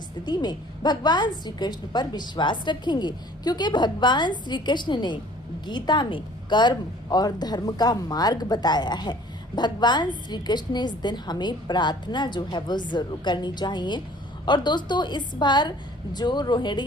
में भगवान श्री कृष्ण पर विश्वास रखेंगे, क्योंकि भगवान श्री कृष्ण ने गीता में कर्म और धर्म का मार्ग बताया है। भगवान श्री कृष्ण ने इस दिन हमें प्रार्थना जो है वो जरूर करनी चाहिए। और दोस्तों, इस बार जो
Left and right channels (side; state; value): both; normal; correlation 0.52